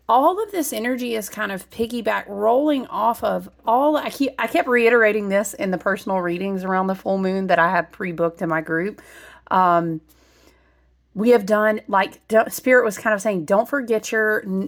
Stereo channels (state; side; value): identical; both; correlation 1.00